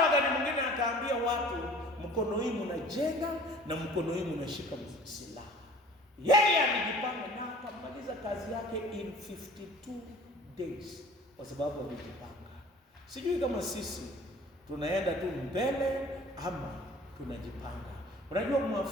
wakati mwingine akaambia watu, mkono hii mnajenga na mkono hii mnashika silaha. Yeye alijipanga na akamaliza kazi yake in 52 days kwa sababu alijipanga. Sijui kama sisi tunaenda tu mbele ama tunajipanga. Unajua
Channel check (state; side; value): normal; both; correlation 0.47